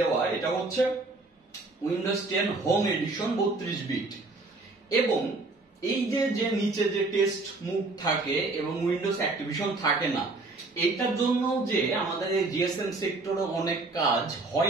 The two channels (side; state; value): left; quieter; 3.4 dB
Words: এটা হচ্ছে উইন্ডোজ 10 হোম এডিশন 32 বিট, এবং এই যে নিচে যে টেস্ট মুভ থাকে এবং উইন্ডোজ অ্যাক্টিভেশন থাকে না, এটার জন্য যে আমাদের এই GSM সেক্টরে অনেক কাজ